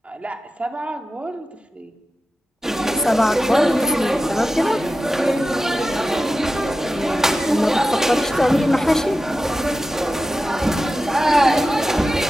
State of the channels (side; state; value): both; normal; correlation 0.94